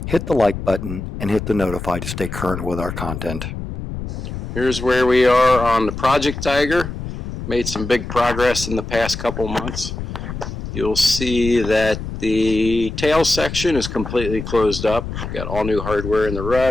hit the like button, and hit the notify to stay current with our content. Here's where we are on the Project Tiger. Made some big progress in the past couple months. You'll see that the tail section is completely closed up. Got all new hardware in the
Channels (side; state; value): left; noise; rumble, 7 dB below the sound